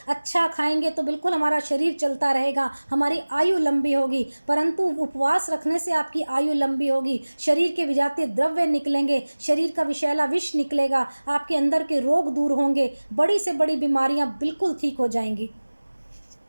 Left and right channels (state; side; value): inverted; both; correlation -1.00